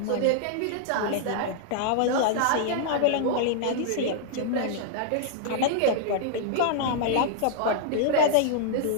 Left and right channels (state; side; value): different; both; correlation -0.01